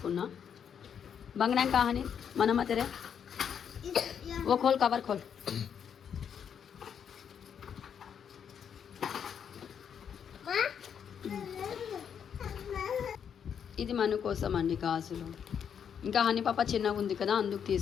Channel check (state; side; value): quieter; right; 7.9 dB